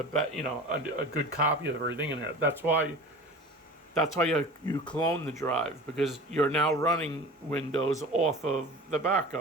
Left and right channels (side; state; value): both; normal; correlation 0.38